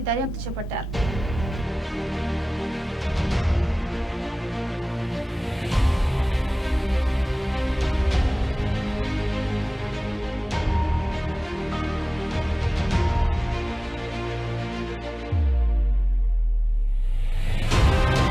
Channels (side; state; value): both; normal; correlation 0.97